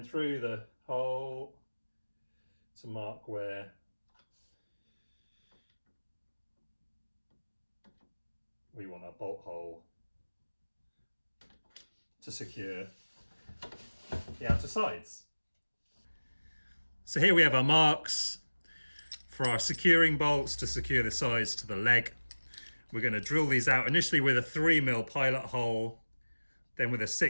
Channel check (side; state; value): both; inverted; correlation -1.00